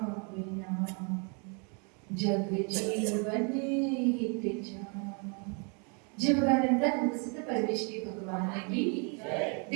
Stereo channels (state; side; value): quieter; left; 36.1 dB